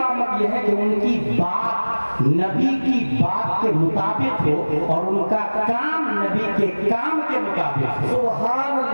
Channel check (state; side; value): inverted; both; correlation -1.00